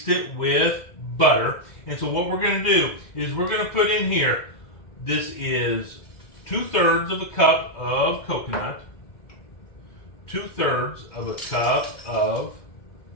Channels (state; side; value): late; right; 2.1 ms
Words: it with butter. And so what we're going to do is we're going to put in here, this is 2/3 of a cup of coconut, 2/3 of a cup of